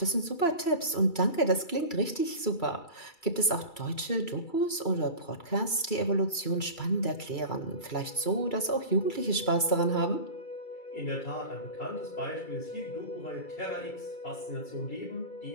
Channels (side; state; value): right; late; 2.3 ms